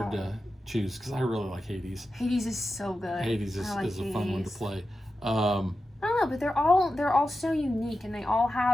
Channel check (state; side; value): normal; both; correlation 0.92